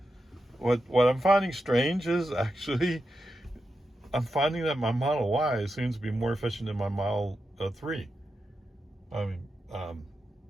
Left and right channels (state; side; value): normal; both; correlation 0.88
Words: What I'm finding strange is actually, I'm finding that my Model Y seems to be more efficient than my Model 3. I mean,